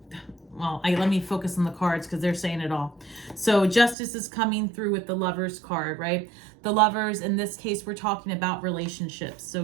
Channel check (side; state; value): left; drops out; at 4.0 s